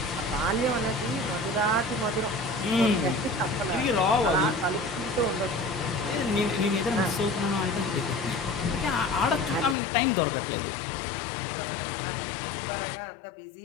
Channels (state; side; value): drops out; right; at 9.8 s